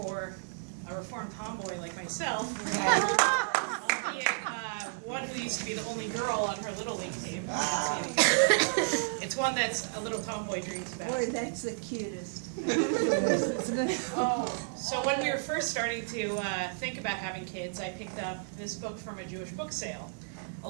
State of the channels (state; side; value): silent; left; digital silence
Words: a reformed tomboy like myself, albeit one who used to be the only girl on her Little League team, it's one that's a little tomboy dreams about. Boy, that's the cutest. So when we were first starting to think about having kids, I picked up this book from a Jewish book sale. A